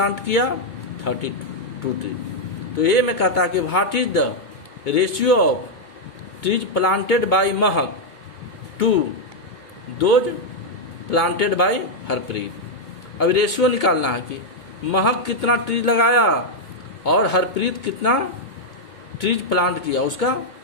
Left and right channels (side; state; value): right; late; 2.2 ms